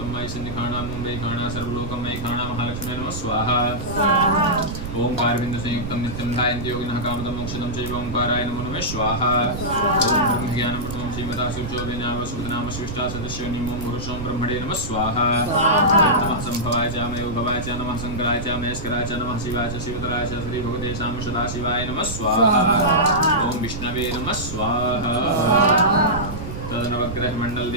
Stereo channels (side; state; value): right; noise; rumble, 7 dB below the sound